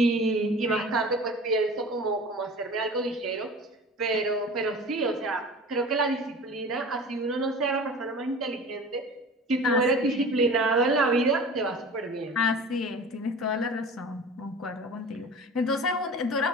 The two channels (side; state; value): both; normal; correlation 0.39